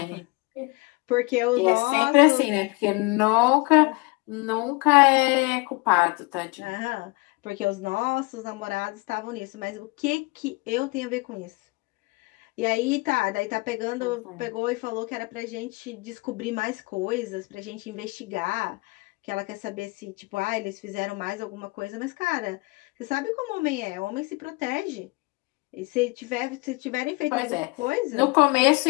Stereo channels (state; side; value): quieter; right; 26.5 dB